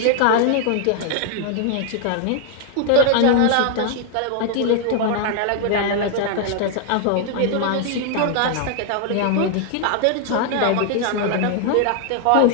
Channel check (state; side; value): different; both; correlation 0.00